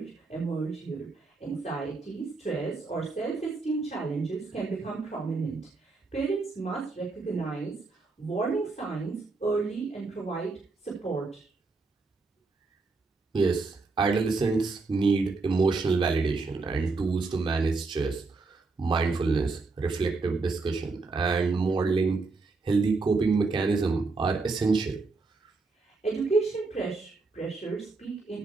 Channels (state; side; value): quieter; left; 3.9 dB